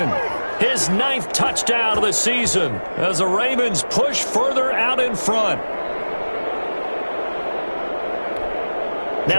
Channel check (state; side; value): inverted; both; correlation -1.00